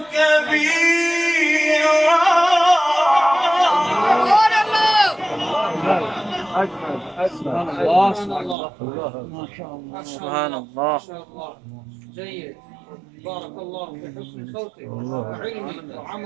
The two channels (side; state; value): left; drops out; at 8.6 s